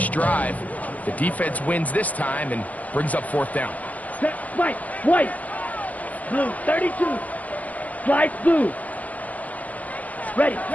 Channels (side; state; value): right; late; 0.075 ms